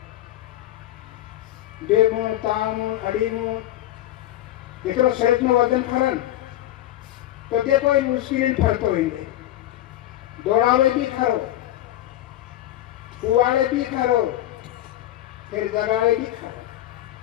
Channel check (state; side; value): quieter; right; 13.9 dB